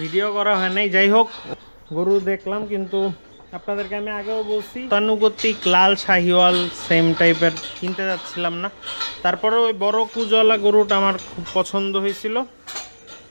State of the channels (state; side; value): inverted; both; correlation -1.00